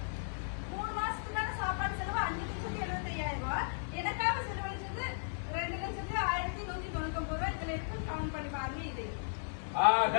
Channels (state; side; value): silent; right; digital silence